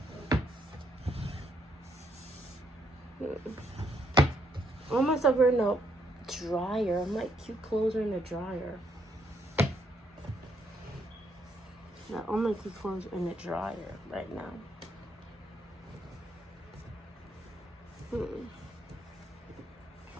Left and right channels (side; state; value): both; normal; correlation 0.74